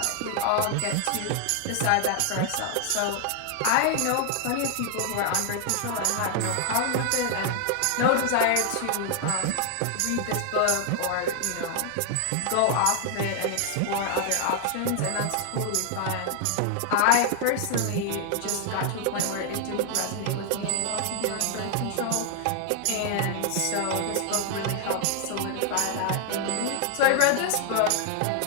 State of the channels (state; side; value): different; both; correlation 0.00